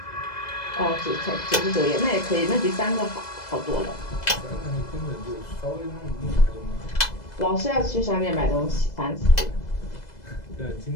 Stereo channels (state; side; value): late; right; 2.0 ms